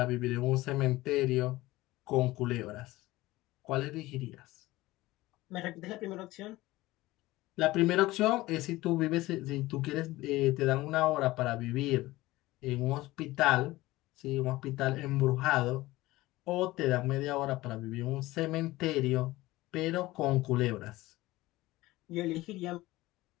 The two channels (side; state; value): right; quieter; 18.5 dB